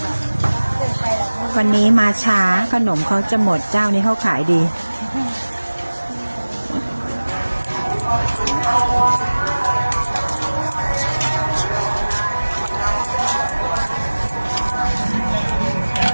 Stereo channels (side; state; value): both; inverted; correlation -1.00